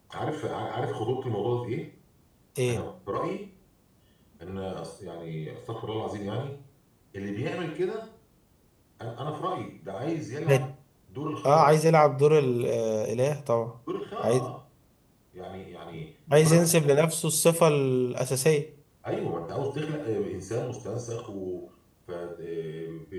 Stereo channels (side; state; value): both; identical; correlation 1.00